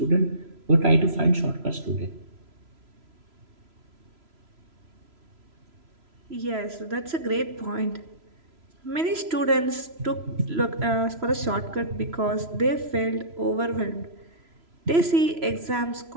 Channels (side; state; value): left; late; 3.0 ms